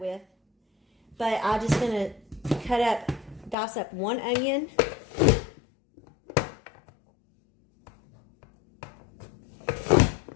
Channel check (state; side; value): drops out; right; at 3.6 s